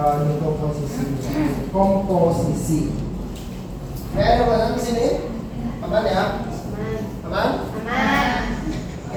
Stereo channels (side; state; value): both; identical; correlation 1.00